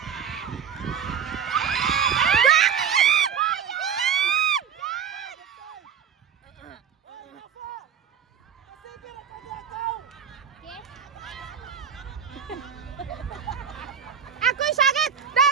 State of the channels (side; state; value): left; quieter; 7.7 dB